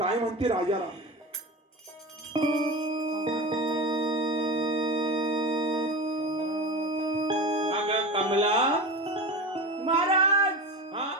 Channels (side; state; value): both; normal; correlation 0.27